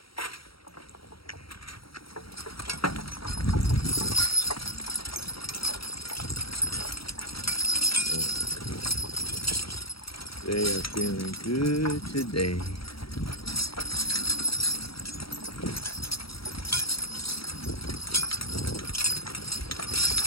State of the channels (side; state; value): right; late; 0.75 ms